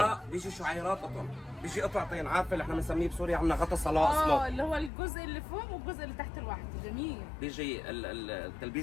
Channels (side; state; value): right; drops out; at 4.9 s